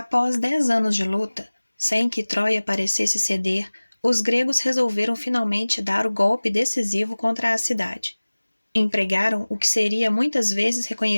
10 anos de luta, sem que Troia parecesse ceder, os gregos resolveram finalmente dar o golpe decisivo contra a cidade. Empregaram o que seria muitas vezes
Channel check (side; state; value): both; inverted; correlation -1.00